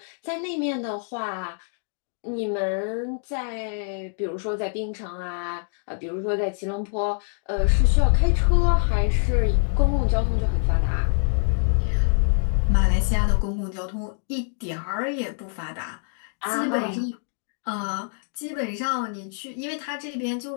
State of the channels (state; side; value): silent; right; 62 dB below the other